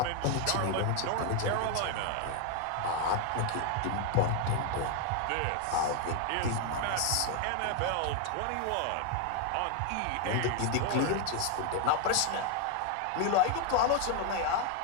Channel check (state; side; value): different; both; correlation 0.01